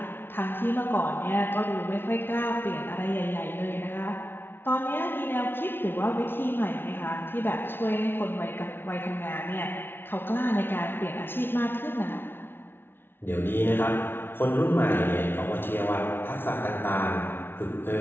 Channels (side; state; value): right; late; 0.11 ms